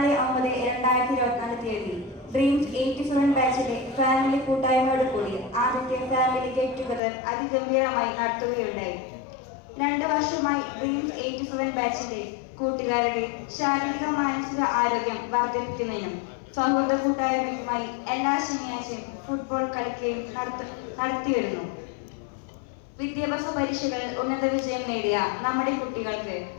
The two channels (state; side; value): drops out; right; at 7.0 s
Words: തീയതി ഡ്രീംസ് 87 ബാച്ചിലെ ഫാമിലി കൂട്ടായ്മയോട് കൂടി ആദ്യത്തെ ഫാമിലി ഗെറ്റ് ടുഗദർ അതിഗംഭീരമായി നടത്തുകയുണ്ടായി. 2 വർഷമായി ഡ്രീംസ് 87 ബാച്ചിലെ കൂട്ടുകാരുടെ ശാരീരിക മാനസിക ആരോഗ്യം വർദ്ധിപ്പിക്കുന്നതിനും സൗഹൃദ കൂട്ടായ്മയുമായി എല്ലാ ശനിയാഴ്ചയും ഫുട്ബോൾ കളിക്കുകയും നടത്തിവരുന്നു. വിദ്യാഭ്യാസ പരീക്ഷകളിൽ ഉന്നത വിജയം നേടിയ നമ്മുടെ കുട്ടികൾക്ക്